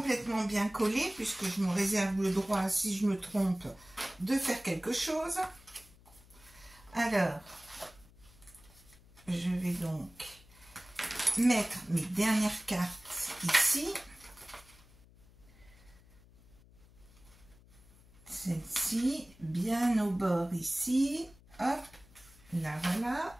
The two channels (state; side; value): noise; left; hum, 25 dB below the sound